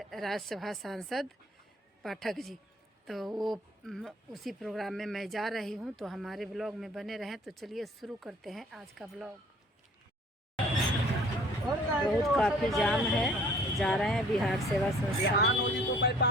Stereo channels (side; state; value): both; normal; correlation 0.53